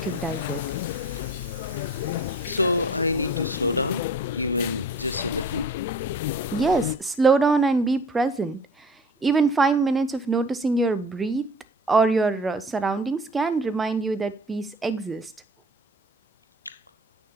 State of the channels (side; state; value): both; normal; correlation 0.43